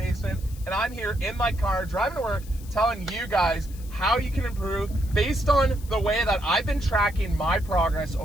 and I'm here in my car driving to work telling you guys how you can improve based on the way that I've been tracking my progress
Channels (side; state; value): left; noise; hiss, 21 dB below the sound